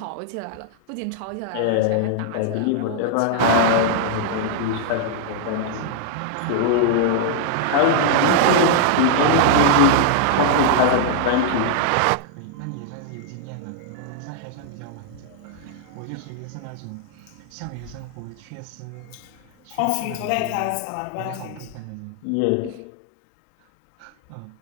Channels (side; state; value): both; different; correlation 0.00